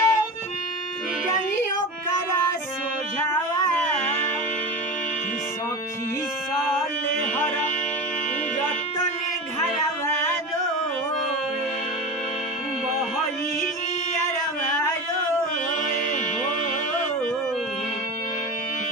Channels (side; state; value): both; normal; correlation 0.26